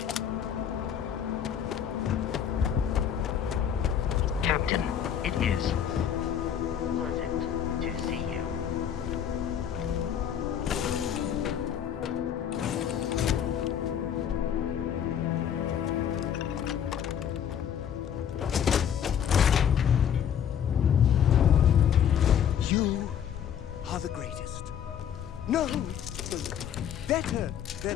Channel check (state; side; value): quieter; right; 8.9 dB